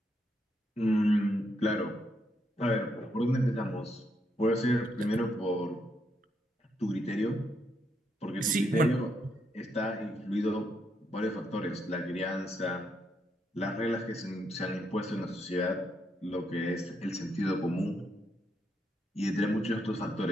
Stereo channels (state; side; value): normal; both; correlation 0.78